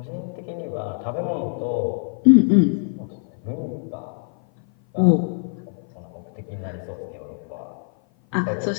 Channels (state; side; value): silent; right; 56 dB below the other